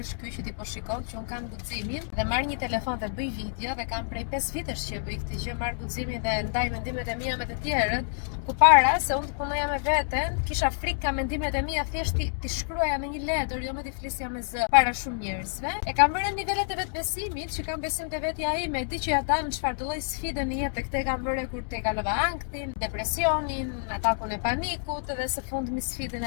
është ky që ti po shikon që un kam guximin dhe marr një telefon dhe bëj video dhe kam prej 5 vitesh që bëj këtë gjë, marr guximin dhe ndaj mendimet e mia me të tjerët. Përpara se unë të punoja me veten, kisha frikë ka mendimet e mia thjesht ti shkruaja në një letër, jo me ti flisja me zë para shumë njerëzve. E kam vënë nivelet e vetbesimit, që kam besim te vetja ime, di që ja dal në çfarë lloj sfide në jetë, këtë kam vënë kur te kalova anktin, depresionin, atakun e panikut dhe së fundmi sfidën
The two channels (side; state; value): right; silent; digital silence